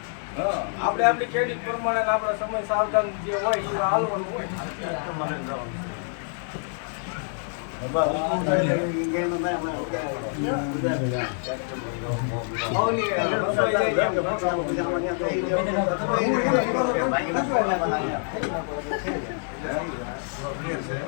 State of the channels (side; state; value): right; silent; 61 dB below the other